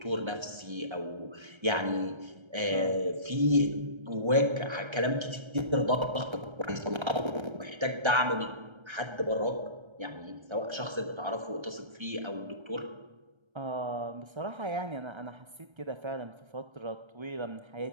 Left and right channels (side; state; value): left; late; 1.3 ms